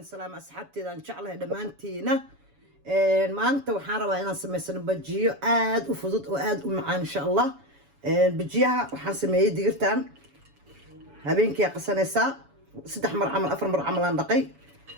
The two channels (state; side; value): late; left; 7.1 ms